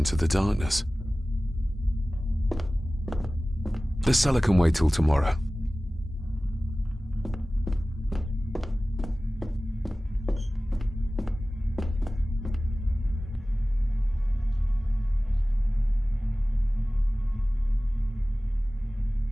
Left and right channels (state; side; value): normal; both; correlation 0.97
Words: the darkness. The cellar can wait till tomorrow.